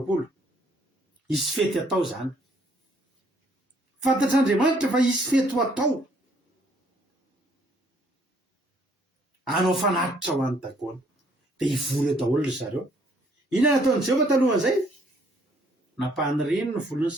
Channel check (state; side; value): normal; both; correlation 0.64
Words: isy fety atao zany. Fantatr'andriamanitra fa isy fety ho atao. Anao fanatitra ho an'ny dagoana. Dia hivory eo daholo ry zareo. Inona nataon'i Jehovah talohan'izay? Napahany reny ny volon'ny